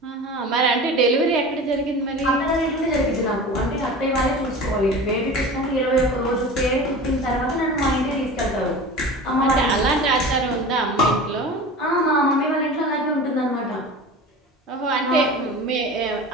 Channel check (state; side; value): normal; both; correlation 0.35